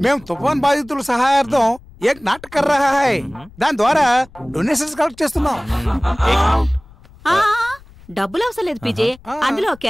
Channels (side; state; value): left; noise; rumble, 23 dB below the sound